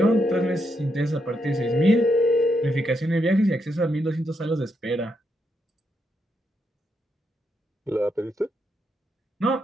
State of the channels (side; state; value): both; normal; correlation 0.80